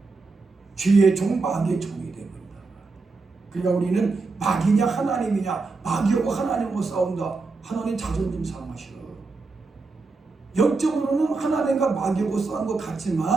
죄의 종, 마귀의 종이 되어버린다. 그러니까 우리는 마귀냐 하나님이냐, 마귀하고 하나님하고 싸운다. 하나님 자존심 상하셔. 영적으로는 하나님과 마귀하고 싸운 것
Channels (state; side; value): quieter; left; 4.0 dB